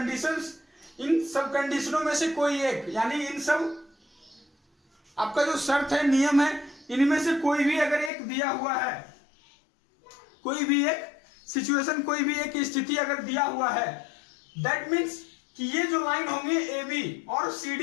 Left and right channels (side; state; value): right; drops out; at 8.1 s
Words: इन सब कंडीशनों में से कोई एक, यानी इन सब आपका जो शर्त है, नियम है, इनमें से कोई भी अगर एक दिया हुआ है, कोई भी एक सिचुएशन, कोई भी एक स्थिति अगर दिया हुआ है, दैट मीन्स कि ये जो लाइन होंगे ए बी और सी